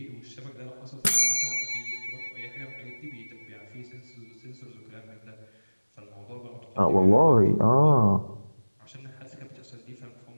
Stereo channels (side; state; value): both; inverted; correlation -1.00